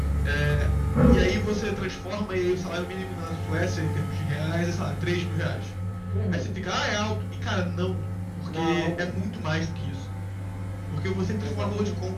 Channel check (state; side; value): identical; both; correlation 1.00